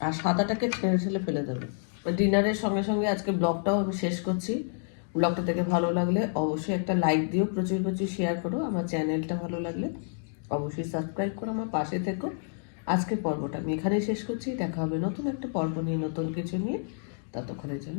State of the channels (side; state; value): right; silent; digital silence